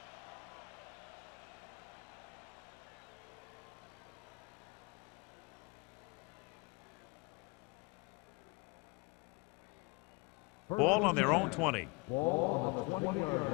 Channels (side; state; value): right; quieter; 27.3 dB